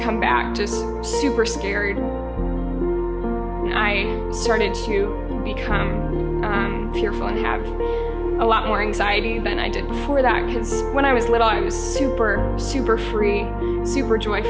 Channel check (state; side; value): identical; both; correlation 1.00